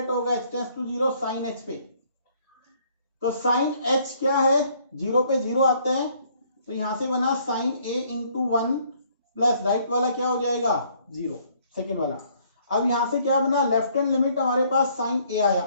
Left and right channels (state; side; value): inverted; both; correlation -0.63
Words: होगा, h tends to 0 sine h पे। तो साइन h क्या है, 0 पे 0 आता है, तो यहां से बना sine a into 1 plus right वाला क्या हो जाएगा 0, सेकेंड वाला। अब यहां से क्या बना, लेफ्ट हैंड लिमिट हमारे पास साइन a आया,